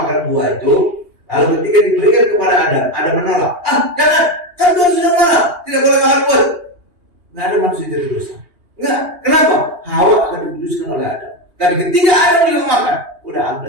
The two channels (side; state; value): left; late; 2.8 ms